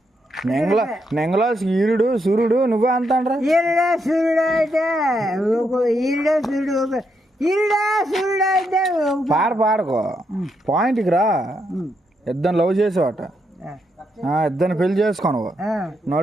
నెంగలో ఈరుడు సూర్యుడు నువ్వే అంటాండ్రా? ఈరుడా సూర్యుడు అయితే ఈరుడా సూర్యుడు ఈరుడా సూర్యుడు అయితే పాడుకో పాయింట్కి రా. ఇద్దరు లవ్ చేసావట, ఇద్దరిని పెళ్లి చేసుకోనవు,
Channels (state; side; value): normal; both; correlation 0.79